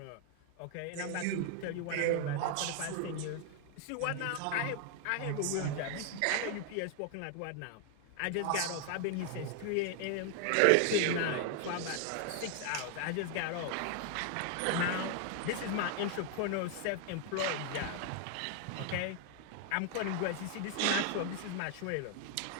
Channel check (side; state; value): both; different; correlation 0.00